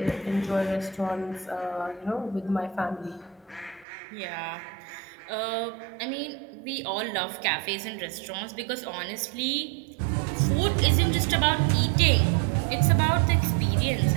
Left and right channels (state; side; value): drops out; left; at 3.9 s